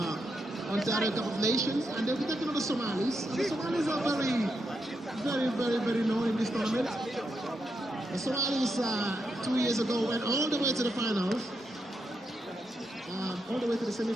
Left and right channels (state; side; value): normal; both; correlation 0.83